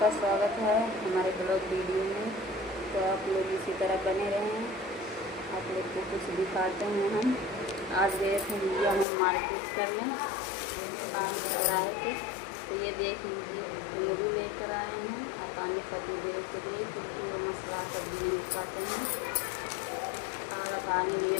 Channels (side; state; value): right; drops out; at 9.1 s